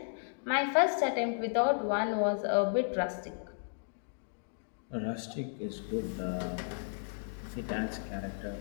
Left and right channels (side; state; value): right; silent; digital silence